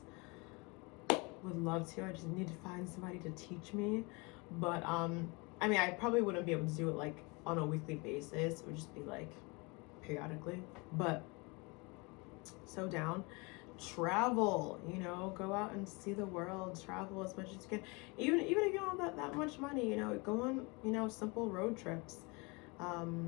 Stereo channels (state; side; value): quieter; right; 28.3 dB